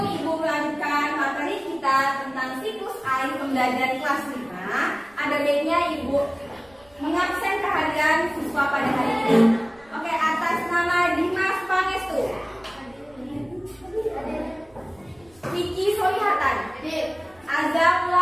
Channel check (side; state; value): right; noise; rumble, 29 dB below the sound